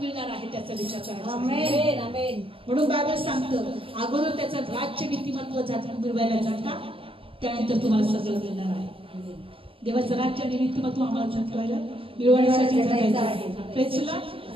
आहे त्याचा विचार करायचा. म्हणून बायबल सांगतं, अगोदर त्याचं राज्य नीतिमत्व मिळवायला जाता, त्यानंतर तुम्हाला सगळं मिळणार आहे. देवाचं राज्य आणि नीतिमत्व आम्हाला जगवायला मिळवण्यासाठी जगायचं आहे. प्रेझला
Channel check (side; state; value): left; late; 0.26 ms